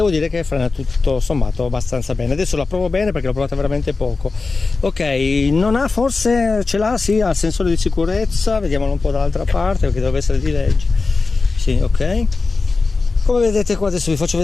dire che frena tutto sommato abbastanza bene. Adesso la provo bene perché l'ho provata veramente poco. Ok, non ha, forse ce l'ha, sì, ha il sensore di sicurezza, vediamolo un po' dall'altra parte perché deve essere di legge. Sì, ok, come vedete qua adesso vi faccio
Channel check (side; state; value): right; quieter; 4.0 dB